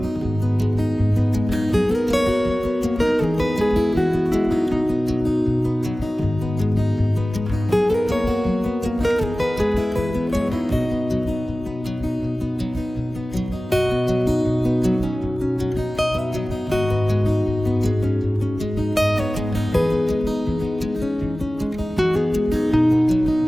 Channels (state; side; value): normal; both; correlation 0.96